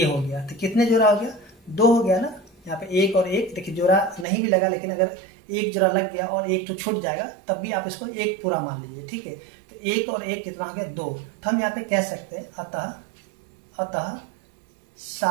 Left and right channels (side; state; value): left; drops out; at 4.2 s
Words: हो गया, तो कितने जोड़ा हो गया, 2 हो गया ना। यहाँ पे एक और एक, देखिए जोड़ा नहीं भी लगा, लेकिन अगर एक जोड़ा लग गया और एक तो छूट जाएगा तब भी आप इसको एक पूरा मान लीजिए, ठीक है। तो एक और एक कितना हो गया, 2। तो हम यहाँ पे कह सकते हैं अतः